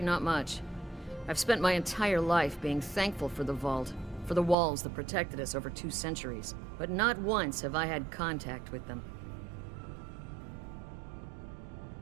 not much. I've spent my entire life being thankful for the Vault, for the walls that protected us over 2 centuries. But not once have I had contact with them.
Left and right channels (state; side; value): drops out; left; at 4.5 s